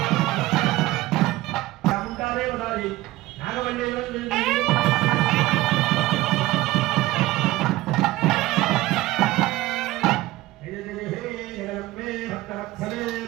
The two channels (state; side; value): quieter; left; 17.7 dB